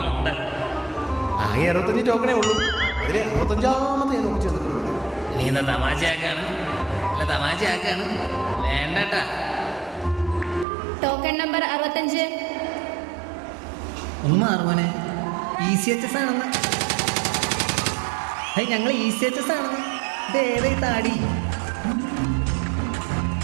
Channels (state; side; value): drops out; left; at 10.7 s